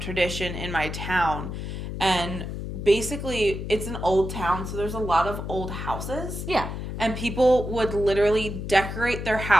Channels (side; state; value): left; noise; hum, 6 dB below the sound